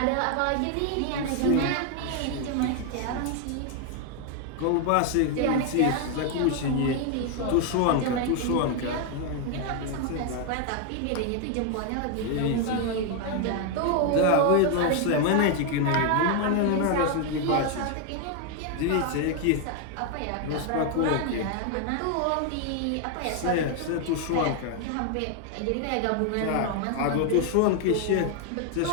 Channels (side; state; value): both; different; correlation 0.01